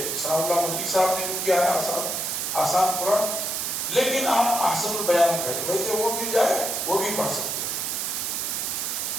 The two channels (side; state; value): right; noise; hiss, 1 dB below the sound